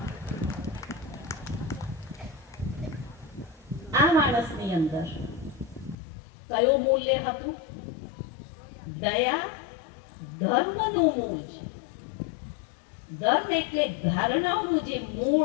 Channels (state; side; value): drops out; right; at 6.0 s